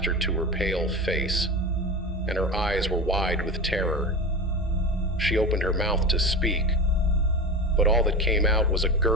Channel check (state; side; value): normal; both; correlation 0.25